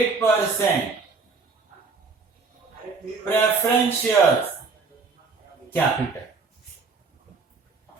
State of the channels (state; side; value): quieter; left; 4.4 dB